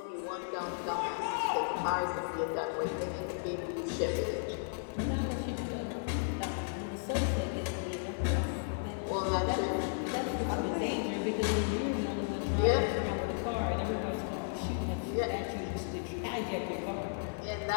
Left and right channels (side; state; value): right; silent; 55 dB below the other